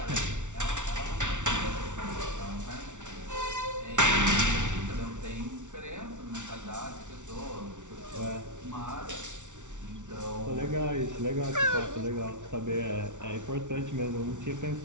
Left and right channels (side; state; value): left; late; 0.86 ms